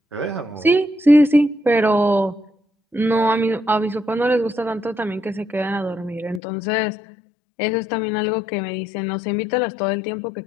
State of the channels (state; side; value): drops out; right; at 6.4 s